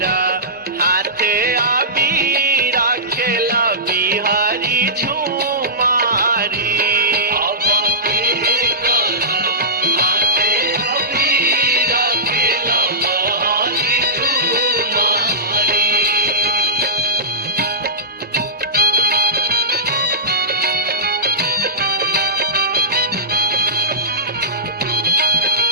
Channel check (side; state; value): both; normal; correlation -0.18